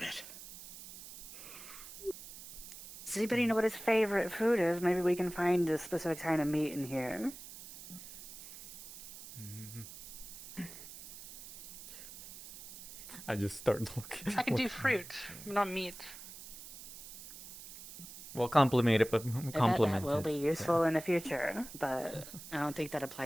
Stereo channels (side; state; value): right; noise; hiss, 14 dB below the sound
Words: Does anybody know what his favorite food is? Maybe we can find a specific kind of meat in here. I just start looking. I can do fruit, not meat. Well, compliment it, but That compliment will it. be useful in the future, but I don't think that